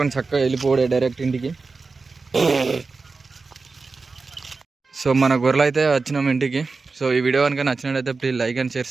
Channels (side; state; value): left; quieter; 4.2 dB